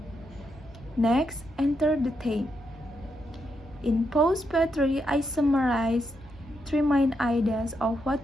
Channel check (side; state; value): both; normal; correlation 0.81